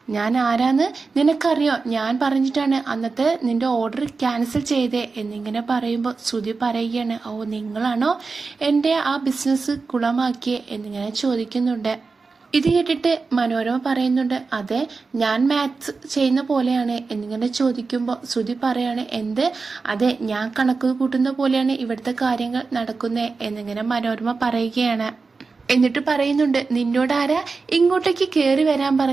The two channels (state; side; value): quieter; left; 4.3 dB